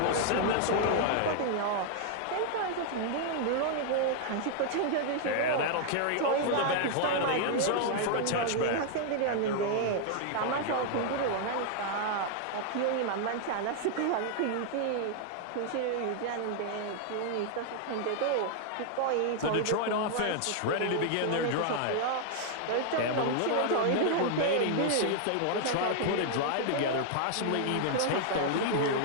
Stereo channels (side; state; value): both; different; correlation 0.00